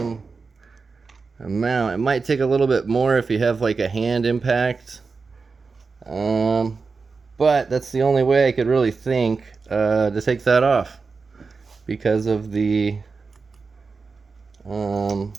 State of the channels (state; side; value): quieter; left; 4.5 dB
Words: amount. It might take a little bit more if you have like a hand impact, but that's the only way I could really think to take that off because of the